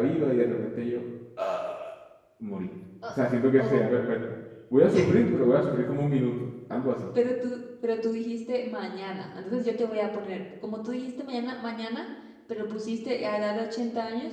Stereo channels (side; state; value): both; identical; correlation 1.00